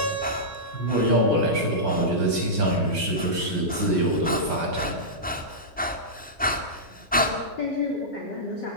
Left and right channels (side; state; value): both; normal; correlation -0.13